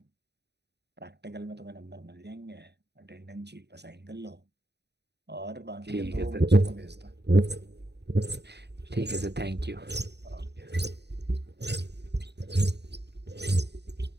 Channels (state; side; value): late; left; 0.49 ms